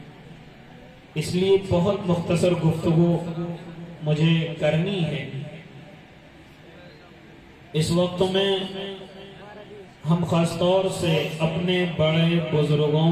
اس لیے بہت مختصر گفتگو مجھے کرنی ہے. اس وقت میں ہم خاص طور سے اپنے بڑے بزرگوں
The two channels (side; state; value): both; identical; correlation 1.00